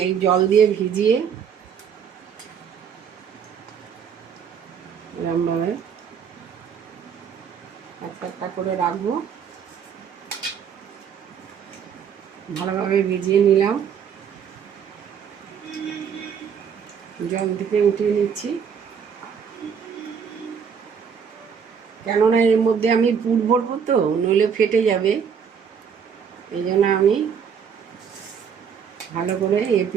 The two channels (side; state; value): left; quieter; 7.1 dB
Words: এই জল দিয়ে ভিজিয়ে এরকমভাবে একটা একটা করে রাখবো। ভালোভাবে ভিজিয়ে নিলাম, জল থেকে উঠিয়ে নিচ্ছি, কেননা এর মধ্যে আমি পুর ভরবো তো, নইলে ফেটে যাবে। এই জন্য আমি ভালো করে